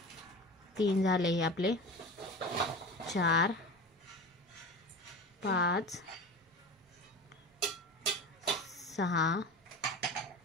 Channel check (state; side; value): normal; both; correlation 0.31